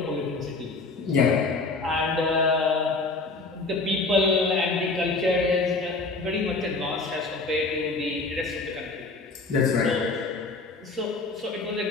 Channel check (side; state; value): right; quieter; 3.6 dB